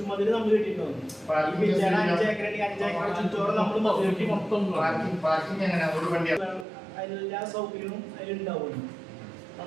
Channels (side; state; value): left; drops out; at 6.7 s